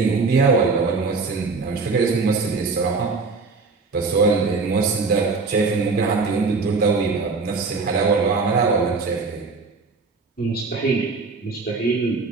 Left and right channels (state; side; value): quieter; left; 4.3 dB